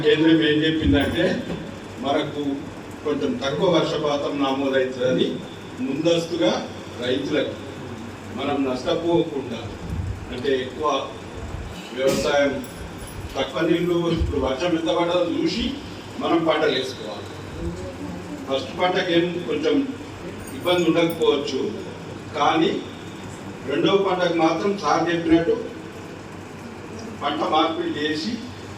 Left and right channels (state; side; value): identical; both; correlation 1.00